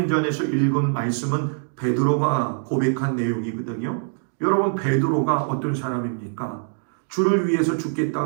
읽은 말씀은 베드로가 고백한 내용이거든요. 여러분, 베드로가 어떤 사람입니까? 주를 위해서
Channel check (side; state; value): left; silent; digital silence